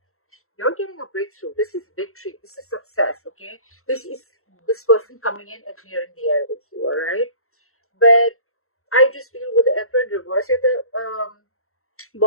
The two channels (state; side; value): late; right; 0.63 ms